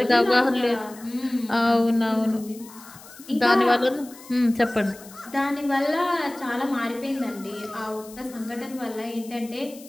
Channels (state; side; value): noise; left; hiss, 20 dB below the sound